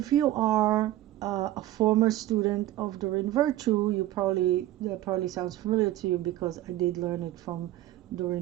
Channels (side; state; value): left; quieter; 14.6 dB